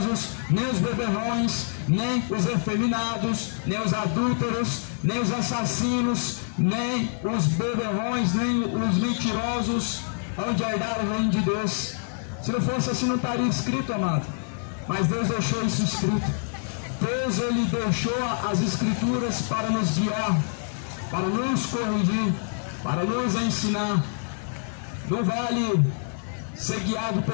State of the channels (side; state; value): right; silent; digital silence